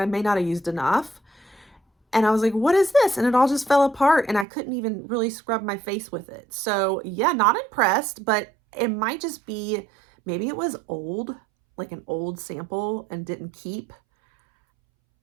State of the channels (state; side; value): drops out; left; at 4.5 s